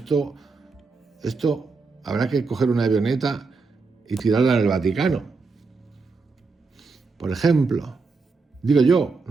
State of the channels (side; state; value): left; quieter; 4.3 dB